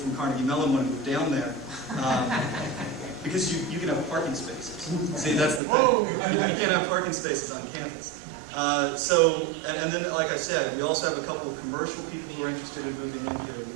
Carnegie Mellon want to move down there. Because you can have parking spaces. See, that's the thing. You can't have parking spaces on campus. And then, like I said, we also have a couple of commercial people who are interested in moving in here.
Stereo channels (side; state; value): left; drops out; at 5.6 s